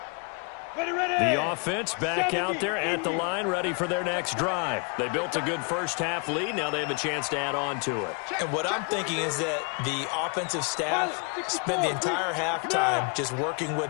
The offense back out there at the line, ready for their next drive. They built a good first-half lead. Now they have a chance to add on to it. And what I'm thinking is that the offensive staff spent the entire halftime just working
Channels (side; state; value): right; quieter; 35.9 dB